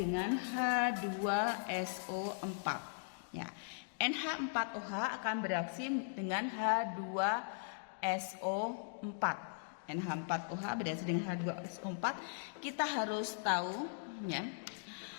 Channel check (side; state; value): right; silent; digital silence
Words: H2SO4 ya. NH4OH akan bereaksi dengan H2SO4. NH4OH bereaksi dengan H2SO4. Kita harus tahu ya.